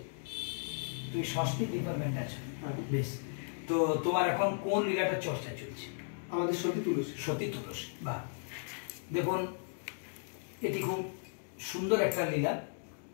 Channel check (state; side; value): silent; right; digital silence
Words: তুই সংস্কৃত ডিপার্টমেন্ট আছে, বেশ। তো তোমার এখন কোন লীলাটা চর্চা চলছে? আমাদের সতী তুলসী। সতী তুলসী, বাহ। দেখুন, এটি খুব সুন্দর একটা লীলা।